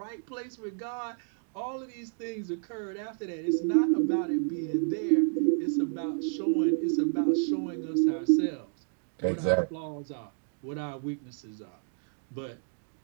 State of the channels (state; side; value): silent; left; 57 dB below the other